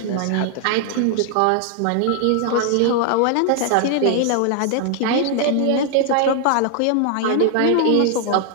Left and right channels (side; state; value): both; different; correlation 0.00